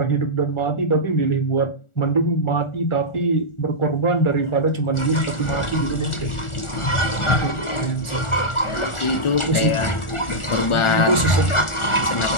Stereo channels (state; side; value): late; right; 1.4 ms